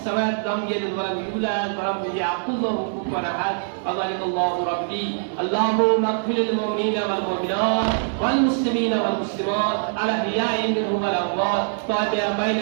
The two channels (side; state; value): left; silent; digital silence